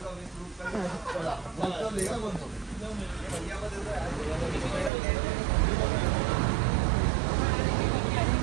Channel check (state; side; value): drops out; left; at 4.9 s